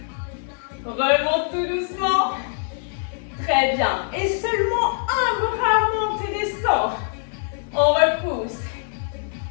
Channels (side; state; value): right; silent; 61 dB below the other